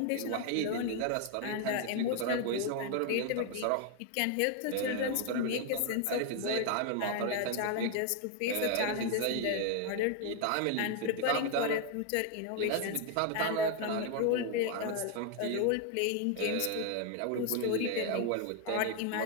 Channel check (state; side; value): different; both; correlation 0.01